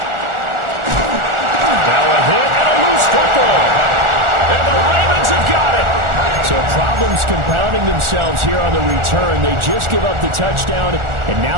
Now a hit and a loose football. And the Ravens have got it. So problems compounding themselves here on the return. They just give up the touchdown, and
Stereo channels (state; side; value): late; left; 1.4 ms